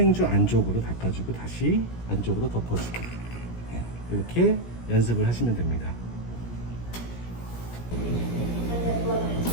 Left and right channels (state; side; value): late; right; 17 ms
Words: 안쪽으로 닦아주고 다시 안쪽으로 덮어주고 이렇게 연습을 하시면 됩니다.